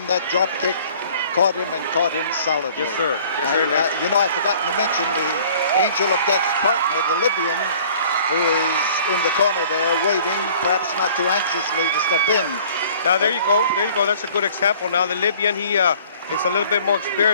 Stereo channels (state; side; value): inverted; both; correlation -0.52